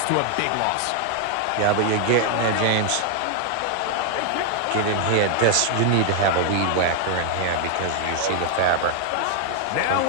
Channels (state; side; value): different; both; correlation 0.00